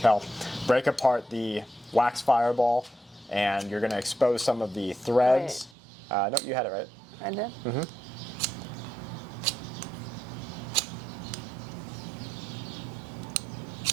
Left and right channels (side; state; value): left; drops out; at 5.7 s